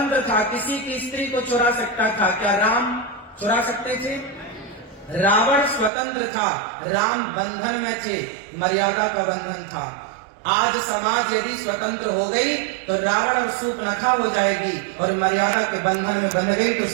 था, किसी की स्त्री को चुरा सकता था, क्या राम चुरा सकते थे? रावण स्वतंत्र था, राम बंधन में थे, मर्यादा का बंधन था। आज समाज यदि स्वतंत्र हो गई तो रावण और शूर्पणखा हो जाएगी, और मर्यादा के बंधन में बंध गई तो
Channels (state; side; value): drops out; left; at 5.9 s